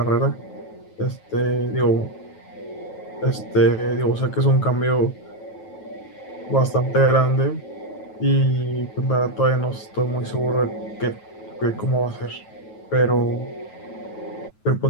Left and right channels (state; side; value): late; right; 9.3 ms